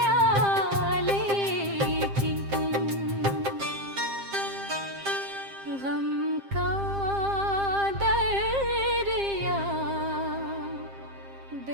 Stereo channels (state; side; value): late; left; 7.5 ms